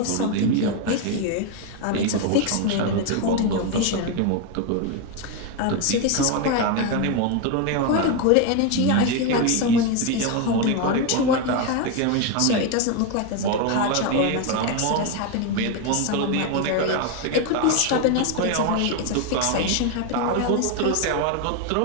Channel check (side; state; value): both; different; correlation 0.02